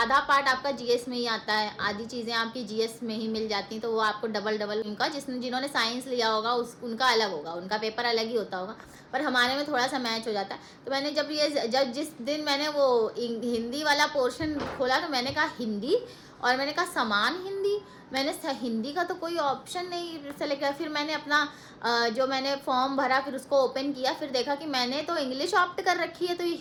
पार्ट आपका जीएस में ही आता है, आधी चीज़ें आपकी जीएस में ही मिल जाती हैं, तो वो आपको डबल उनका जिन्होंने साइंस लिया होगा उनका अलग होगा, उनका पेपर अलग ही होता होगा, पर हमारे में थोड़ा सा मैच हो जाता है। तो मैंने जब जिस दिन मैंने वो हिंदी वाला पोर्शन खोला, तो मैंने कहा हिंदी, और मैंने कहा समान हिंदी, मैंने हिंदी का तो कोई ऑप्शन नहीं सेलेक्ट किया। फिर मैंने अपना जो मैंने फॉर्म भरा, फिर उसको ओपन किया, फिर देखा कि मैंने तो इंग्लिश ऑप्ट कर रखी है, तो ये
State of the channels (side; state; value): both; identical; correlation 1.00